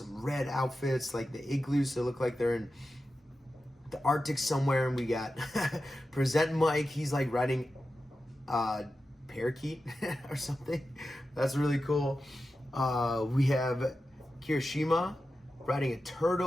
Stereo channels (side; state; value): both; normal; correlation 0.92